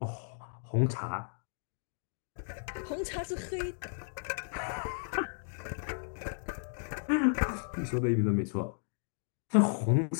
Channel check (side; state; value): right; silent; digital silence